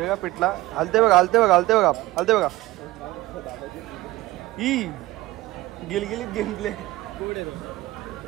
का पिठला हलते बघा, हलते बघा, हलते बघा, हलते बघा. ही गिलगिलीत गेमप्ले.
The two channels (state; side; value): quieter; left; 18.3 dB